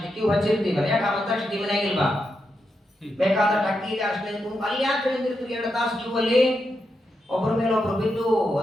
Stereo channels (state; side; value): normal; both; correlation 0.85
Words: ಕ್ಯೂ ಹಚ್ಚಿರ್ತೀವಲ್ಲ, ಯಾಕೆ ಆ ಮಂತ್ರಾಕ್ಷತೆ ಮನೆಯಾಗಿಲ್ವಾ? ಬೇಕಾದಷ್ಟು ಅಕ್ಕಿ ಇದೆ, ಅಷ್ಟೇ ಅಲ್ಲಿ ಯಾಕೆ ನಿಂತಿರ್ತೀವಿ 2 ತಾಸು ಕ್ಯೂ ಅಲ್ಲಿ, ಒಬ್ಬರ ಮೇಲೆ ಒಬ್ರು ಬಿದ್ದು